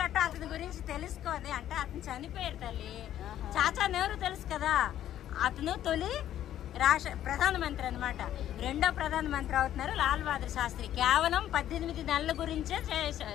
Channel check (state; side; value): quieter; right; 11.7 dB